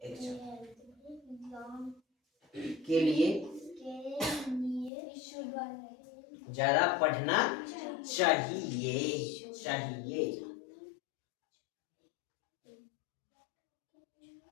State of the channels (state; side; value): drops out; right; at 4.9 s